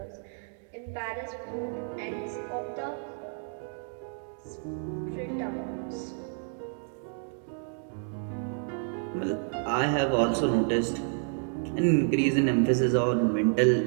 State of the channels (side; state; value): left; silent; 58 dB below the other